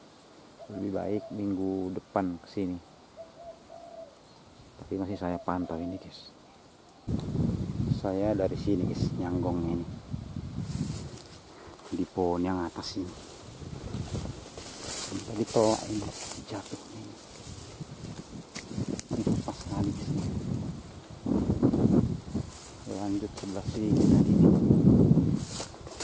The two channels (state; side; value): identical; both; correlation 1.00